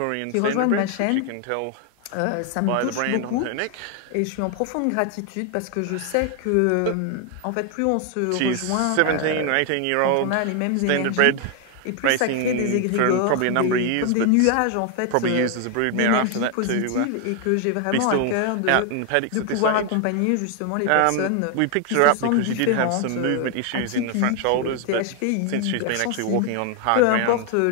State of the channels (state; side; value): different; both; correlation 0.00